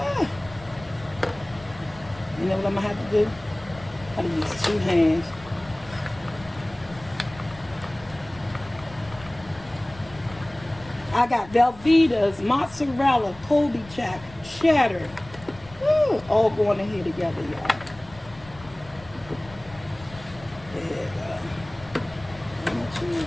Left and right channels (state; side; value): noise; left; rumble, 20 dB below the sound